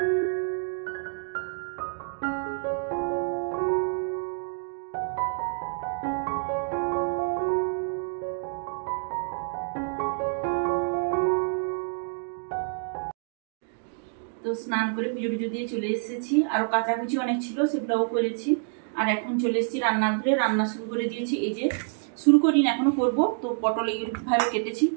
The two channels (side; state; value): left; silent; digital silence